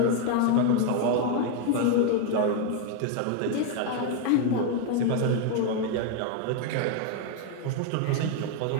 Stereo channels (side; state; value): both; different; correlation 0.01